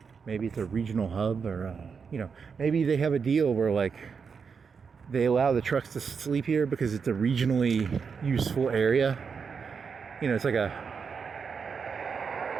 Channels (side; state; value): left; quieter; 5.9 dB